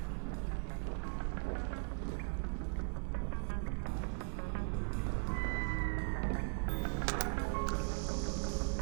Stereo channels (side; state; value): left; silent; 52 dB below the other